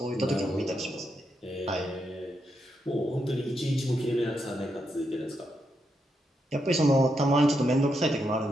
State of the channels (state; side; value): normal; both; correlation 0.82